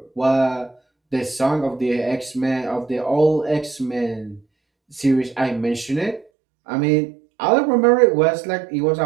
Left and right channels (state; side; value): drops out; left; at 6.2 s